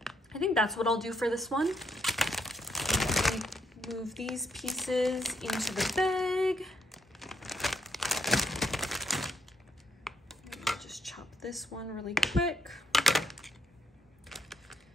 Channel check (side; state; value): both; normal; correlation 0.74